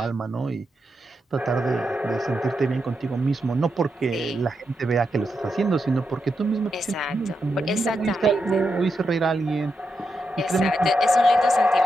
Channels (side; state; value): both; normal; correlation 0.85